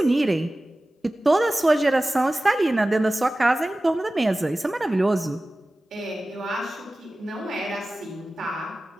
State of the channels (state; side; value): normal; both; correlation 0.96